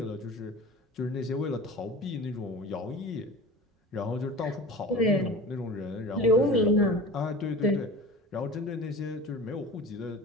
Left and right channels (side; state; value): both; normal; correlation 0.36